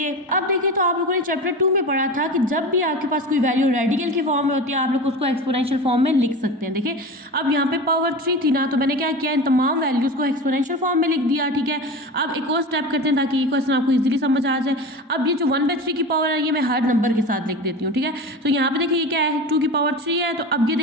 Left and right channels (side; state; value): both; normal; correlation 0.29